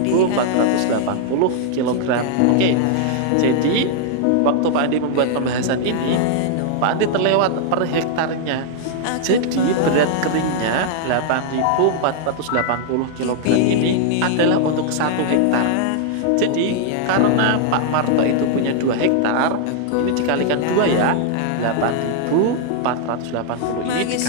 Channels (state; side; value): different; both; correlation -0.01